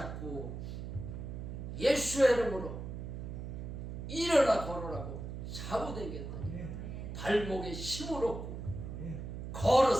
예수의 이름으로 일어나 걸으라고 잡아당겼더니 발목에 힘을 얻고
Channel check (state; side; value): noise; right; hum, 7 dB below the sound